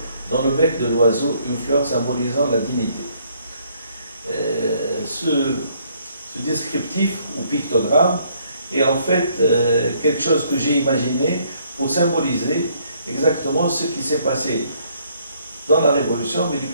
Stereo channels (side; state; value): both; inverted; correlation -0.66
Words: dans le bec de l'oiseau, une fleur symbolisant la dignité. Ce descriptif ou pictogramme est en fait quelque chose que j'ai imaginé pour symboliser exactement ce qui s'est passé dans la Révolution, mais du